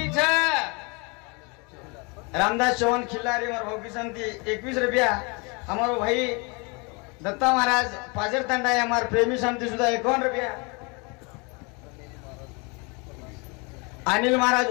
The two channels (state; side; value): quieter; right; 30.3 dB